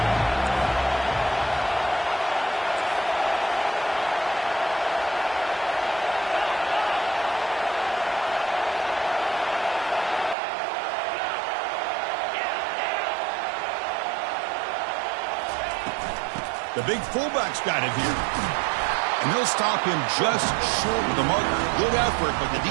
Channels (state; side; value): drops out; left; at 10.4 s